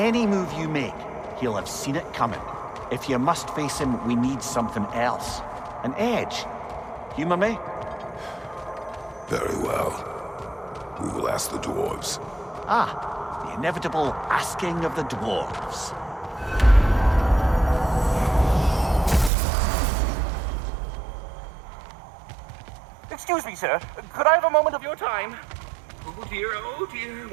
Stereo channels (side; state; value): left; drops out; at 19.3 s